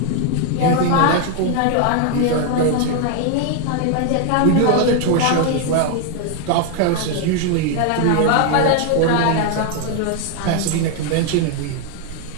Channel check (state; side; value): different; both; correlation 0.00